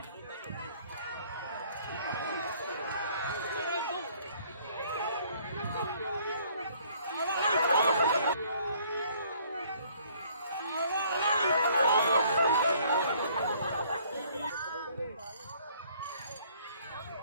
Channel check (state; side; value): inverted; both; correlation -0.60